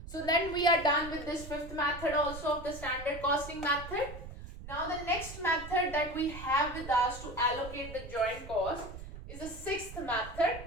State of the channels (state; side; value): noise; right; rumble, 12 dB below the sound